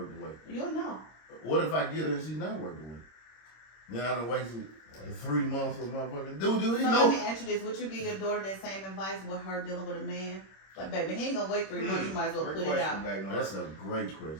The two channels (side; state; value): right; late; 26 ms